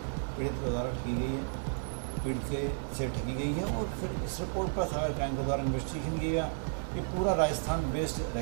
पीड़ित के द्वारा ठगी गई है, पीड़ित से ठगी गई है। और फिर इस रिपोर्ट पर साइबर क्राइम के द्वारा इन्वेस्टिगेशन किया गया। ये पूरा राजस्थान बेस्ड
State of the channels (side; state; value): left; silent; digital silence